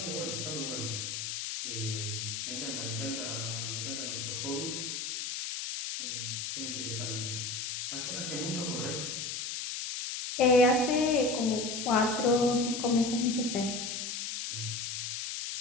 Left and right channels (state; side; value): noise; left; hiss, 4 dB below the sound